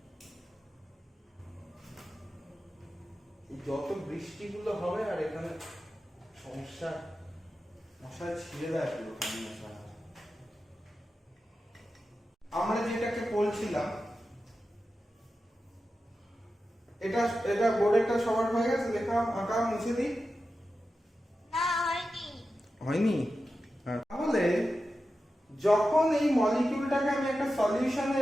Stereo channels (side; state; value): both; normal; correlation 0.92